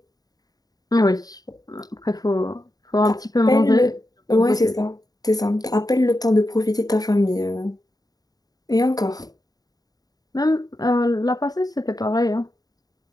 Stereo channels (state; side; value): late; right; 0.18 ms